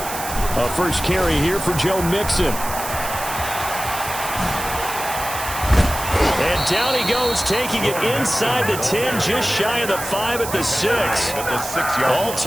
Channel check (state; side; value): noise; right; hiss, 8 dB below the sound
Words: A first carry here for Joe Mixon. And down he goes, taking it inside the 10, just shy of the 5 at the 6. All